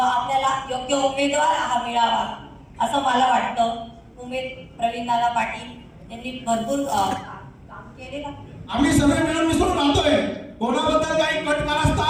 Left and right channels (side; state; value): both; identical; correlation 1.00